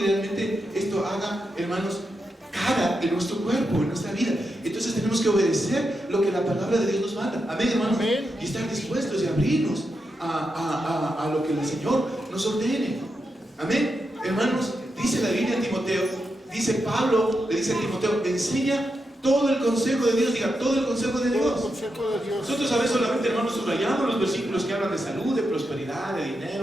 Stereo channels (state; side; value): normal; both; correlation 0.86